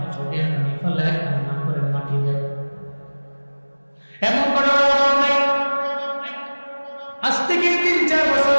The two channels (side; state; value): both; inverted; correlation -1.00